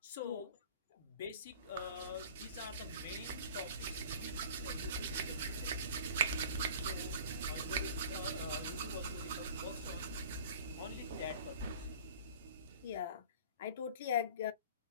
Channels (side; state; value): both; inverted; correlation -0.43